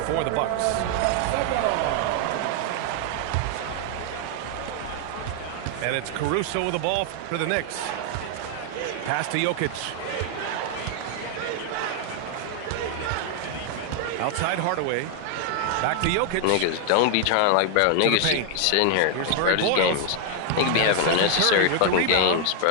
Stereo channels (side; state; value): both; different; correlation 0.00